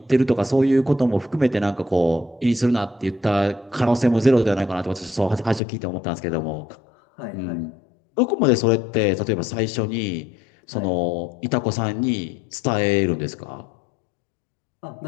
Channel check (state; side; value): drops out; right; at 5.6 s